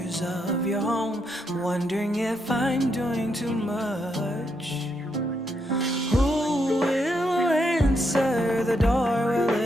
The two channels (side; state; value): both; normal; correlation 0.79